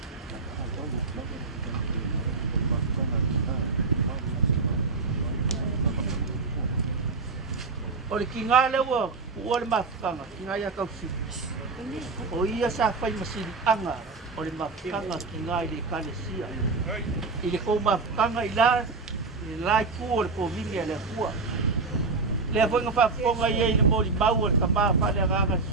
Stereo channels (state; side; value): quieter; left; 4.1 dB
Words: Ole kinga lewa, ole mafukanga, kinga ya kausi. O ia sa fai masiri anga, ole mafukanga kinga ile kalesia. Ile ko mafukanga ila ku ole ko vinga le kua. Le foi nga fafonga ia ile mori mau ole kama fa le ranga